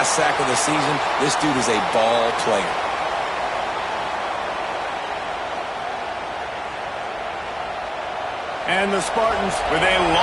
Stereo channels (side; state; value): both; identical; correlation 1.00